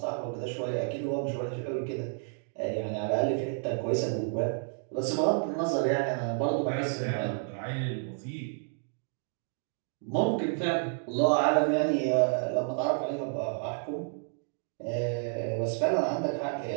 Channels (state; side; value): silent; left; 57 dB below the other